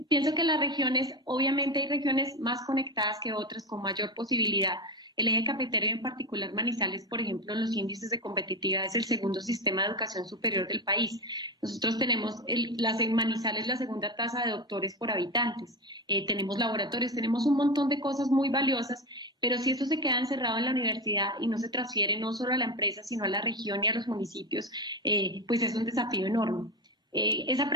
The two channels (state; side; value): normal; both; correlation 0.19